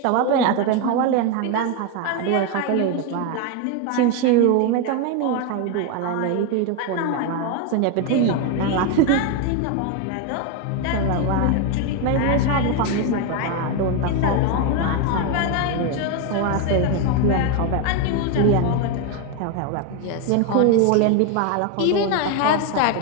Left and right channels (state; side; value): different; both; correlation 0.02